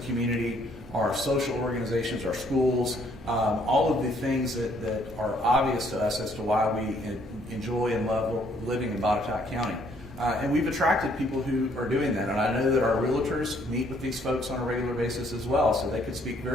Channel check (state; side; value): normal; both; correlation 0.65